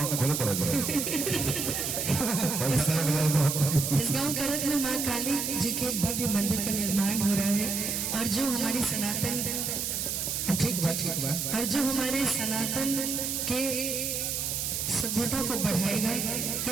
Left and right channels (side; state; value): right; noise; hiss, 1 dB below the sound